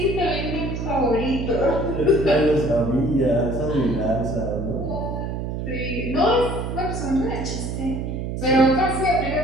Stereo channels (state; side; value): noise; right; hum, 4 dB below the sound